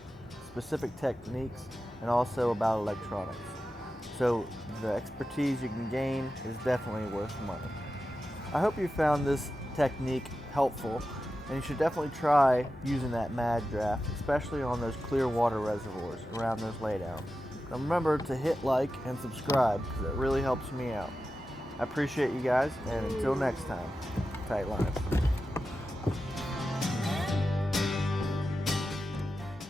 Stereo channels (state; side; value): normal; both; correlation 0.92